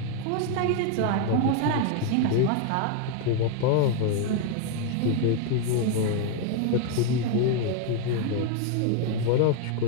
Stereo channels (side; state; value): both; different; correlation 0.01